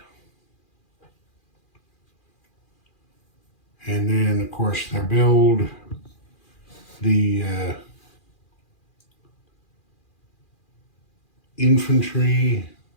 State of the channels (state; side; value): late; right; 2.4 ms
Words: And then, of course, their build, the infantry